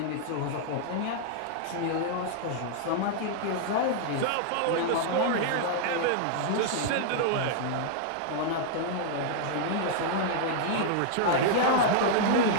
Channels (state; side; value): different; both; correlation -0.01